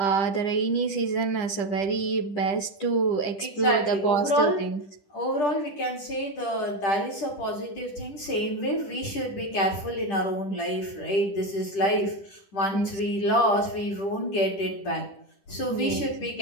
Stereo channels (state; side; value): late; right; 10 ms